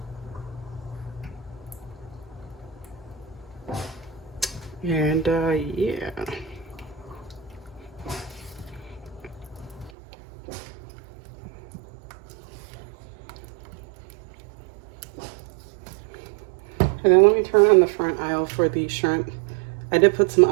And yeah. And then let me turn on the front aisle for the shrimp. I did put some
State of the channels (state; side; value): drops out; left; at 9.9 s